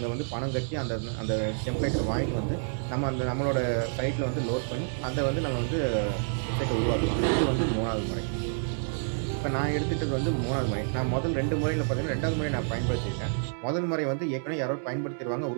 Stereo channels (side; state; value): left; silent; digital silence